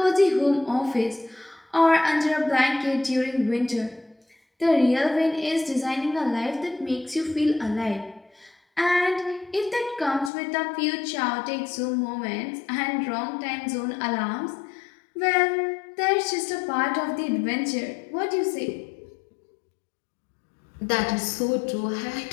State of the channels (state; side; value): drops out; right; at 10.3 s